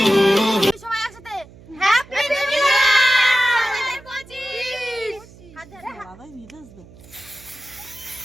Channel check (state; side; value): noise; right; hum, 22 dB below the sound